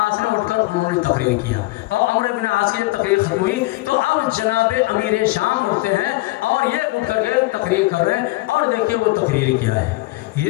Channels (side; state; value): right; quieter; 21.3 dB